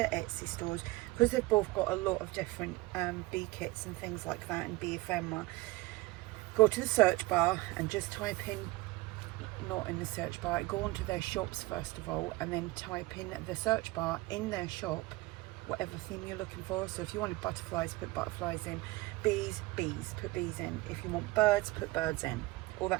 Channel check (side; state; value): left; quieter; 20.8 dB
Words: Etsy stores, because they've both got a lot of different bee kits and things like that, and bee ephemera, go to the search bar and just type in, not in the search bar, go onto their shops first of all, and then type in the search bar in their shop whatever theme you're looking for. So if you wanted butterflies, put butterflies in. Bees, bees, put bees in. If you want birds, put birds in. All